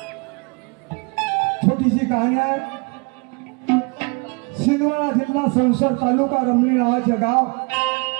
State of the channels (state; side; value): quieter; left; 31.1 dB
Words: छोटीशी कहाणी आहे. सिंदवाडा जिल्हा संसद तालुका रमणी नावाचे गाव,